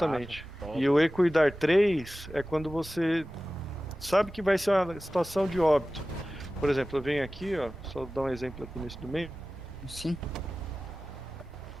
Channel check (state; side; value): normal; both; correlation 0.96